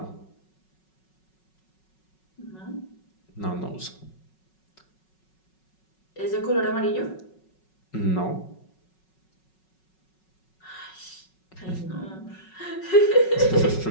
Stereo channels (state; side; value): late; right; 5.4 ms